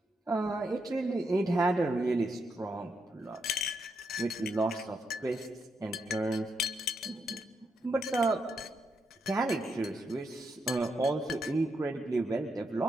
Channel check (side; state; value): both; normal; correlation 0.81